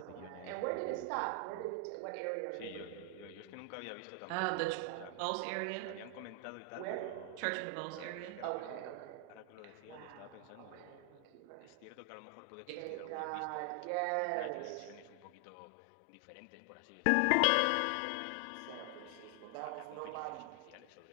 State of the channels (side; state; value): both; different; correlation 0.00